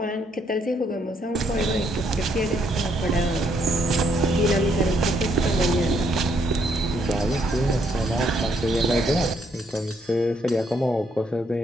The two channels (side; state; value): both; normal; correlation 0.72